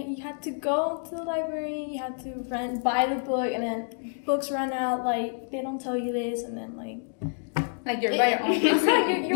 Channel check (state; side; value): silent; right; 59 dB below the other